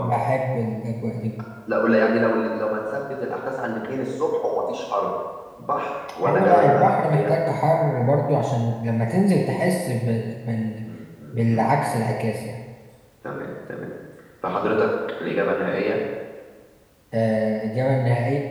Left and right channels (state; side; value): identical; both; correlation 1.00